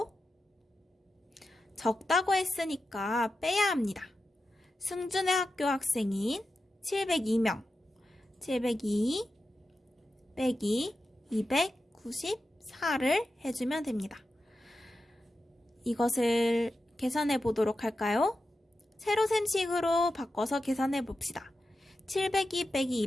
적다고 했으니까 빼야 합니다. 승준의 학교 학생인 702명, 702 빼기 294를 해주면 됩니다. 이것을 계산해 보도록 할까요? 세로셈식으로 바꿔서 계산해 봅시다. 702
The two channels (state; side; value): normal; both; correlation 0.91